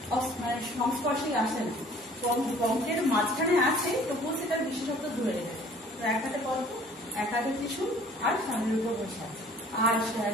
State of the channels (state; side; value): normal; both; correlation 0.53